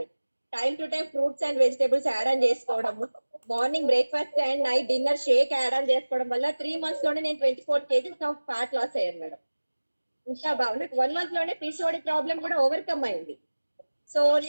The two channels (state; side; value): inverted; both; correlation -1.00